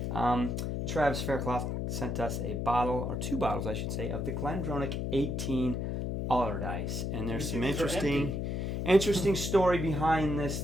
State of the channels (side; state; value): left; noise; hum, 1 dB below the sound